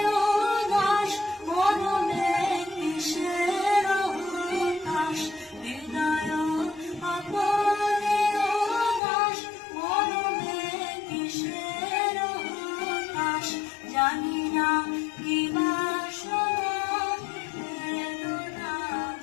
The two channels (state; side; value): drops out; right; at 9.0 s